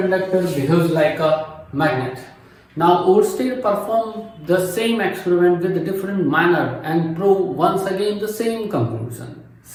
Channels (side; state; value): both; identical; correlation 1.00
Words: behaves like a magnet. Now Oersted performed the same experiment with a different manner and proved once again the same conclusion.